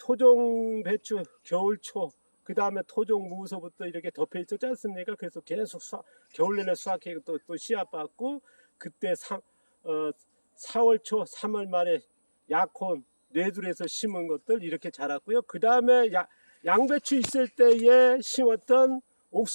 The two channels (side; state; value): both; inverted; correlation -1.00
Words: 배추 겨울초, 그 다음에 토종 무서부터 이렇게 덮여 있었지 않습니까? 그래서 계속 겨울 내내 수확해 또 씨앗 받고, 그때 4월 초 3월 말에 약혼 뇌둘에서 심은 것들 이렇게 자랐고요. 그 다음에 양배추 있을 때에 심었던